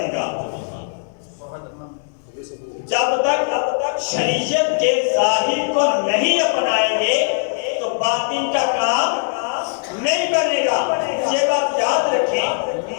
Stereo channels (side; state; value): right; silent; 66 dB below the other